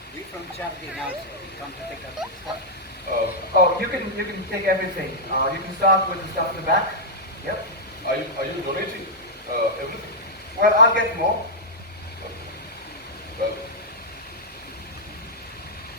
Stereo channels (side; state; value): both; normal; correlation -0.07